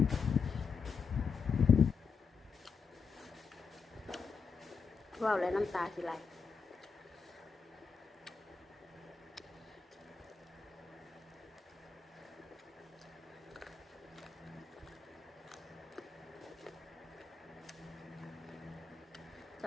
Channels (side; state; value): right; quieter; 5.5 dB